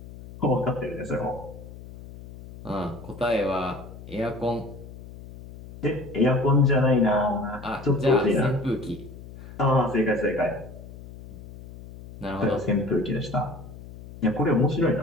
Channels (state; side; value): noise; left; hum, 16 dB below the sound